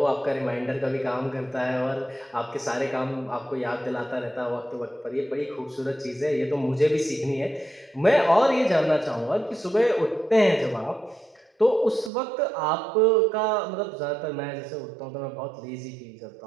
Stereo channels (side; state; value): left; drops out; at 12.1 s